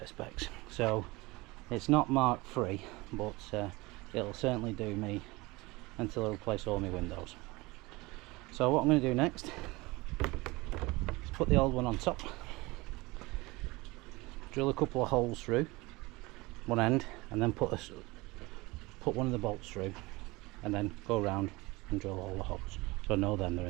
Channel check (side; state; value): left; quieter; 22.8 dB